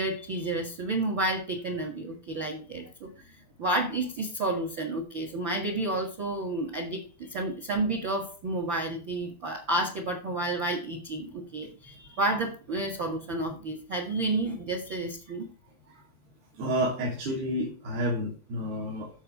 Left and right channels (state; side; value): normal; both; correlation -0.06